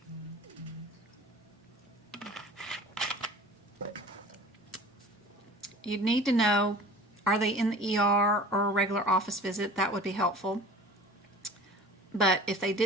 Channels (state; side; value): normal; both; correlation 0.42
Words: You'd need to know, are they in the ER or a regular office visit? That would be helpful. But if they